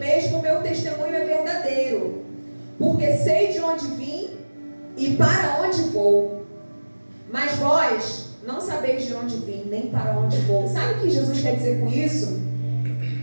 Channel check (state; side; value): inverted; both; correlation -1.00